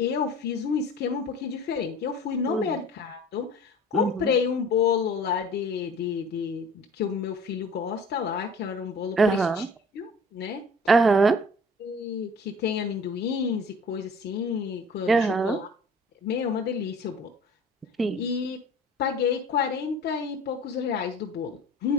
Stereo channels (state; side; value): normal; both; correlation 0.46